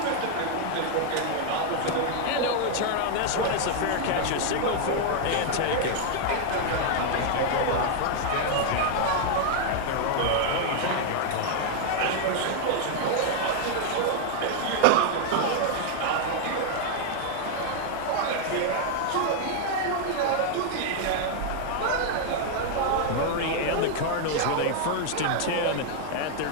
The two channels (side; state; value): both; different; correlation 0.00